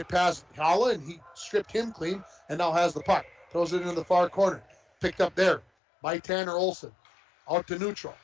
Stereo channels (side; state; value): right; drops out; at 5.7 s